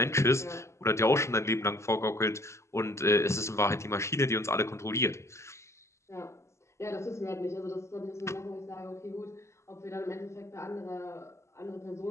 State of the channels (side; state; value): right; late; 0.13 ms